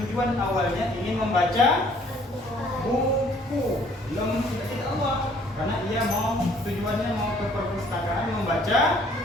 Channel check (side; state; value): both; normal; correlation 0.59